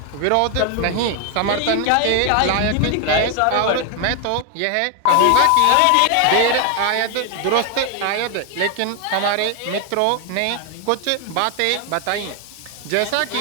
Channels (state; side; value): different; both; correlation 0.01